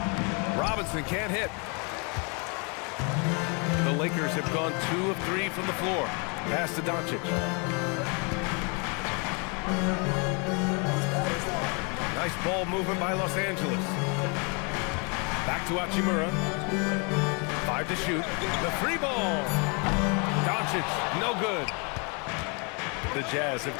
Robinson can't hit. The Lakers have gone 2 of 3 from the floor. Pass to Doncic. Nice ball movement by Los Angeles. Back to Hachimura. 5 to shoot. The 3 ball. Doncic, no good. The Jazz have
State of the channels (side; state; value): right; quieter; 34.3 dB